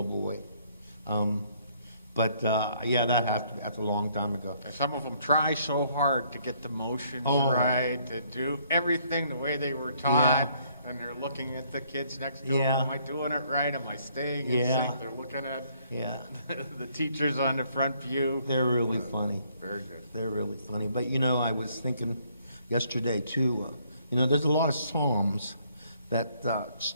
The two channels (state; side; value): inverted; both; correlation -0.66